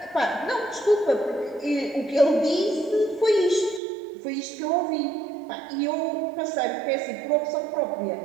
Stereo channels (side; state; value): left; drops out; at 3.8 s